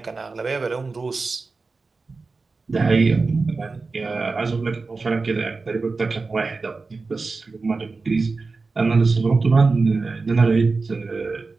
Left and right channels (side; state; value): left; quieter; 4.0 dB